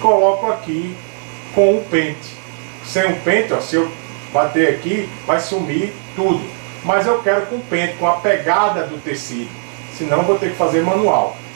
aqui com o pente. Sem o pente, ó, se eu bater aqui, vai sumir tudo. Mas eu quero com o pente, com a pegada do tecido, senão eu vou ter que fazer manual.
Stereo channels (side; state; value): left; silent; digital silence